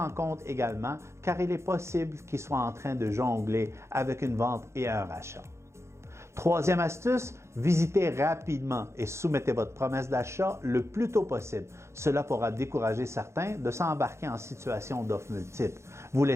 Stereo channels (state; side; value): late; left; 0.13 ms